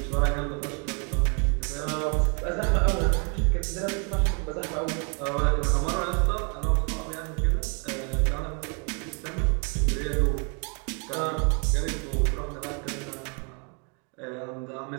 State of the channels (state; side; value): quieter; left; 36.1 dB